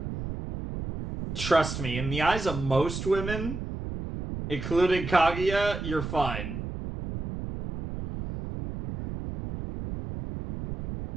Trust me, in the eyes of most women, including Kaguya, you're fine.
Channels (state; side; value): noise; right; rumble, 7 dB below the sound